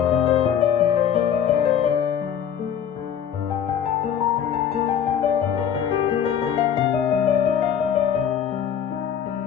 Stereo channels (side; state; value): right; quieter; 8.7 dB